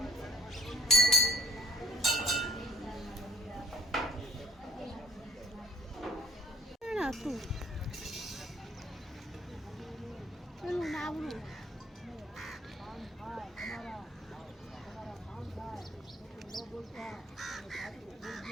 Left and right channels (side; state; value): both; normal; correlation 0.60